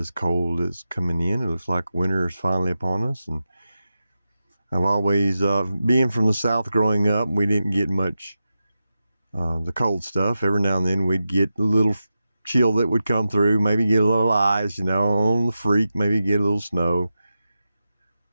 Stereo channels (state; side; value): inverted; both; correlation -0.91